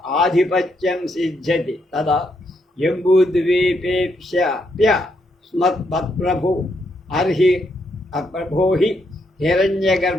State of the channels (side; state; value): both; normal; correlation 0.77